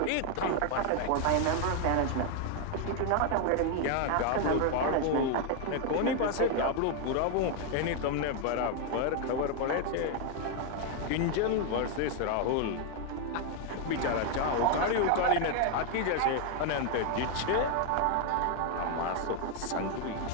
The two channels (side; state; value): both; different; correlation 0.01